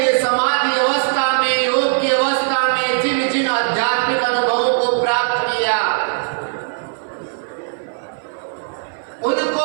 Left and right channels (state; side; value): silent; left; 57 dB below the other